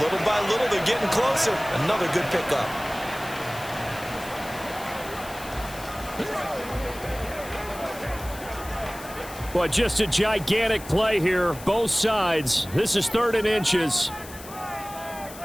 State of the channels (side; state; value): left; noise; hiss, 16 dB below the sound